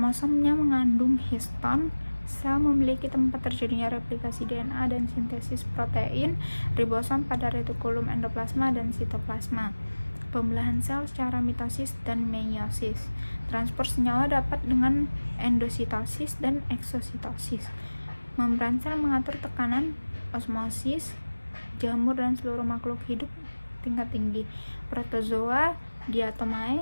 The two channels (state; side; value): inverted; both; correlation -1.00